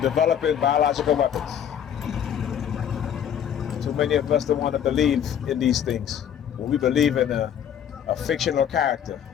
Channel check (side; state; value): right; quieter; 9.2 dB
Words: developing biological weapons. Too many of us don't want to believe in these things. When we believe in a fictional character,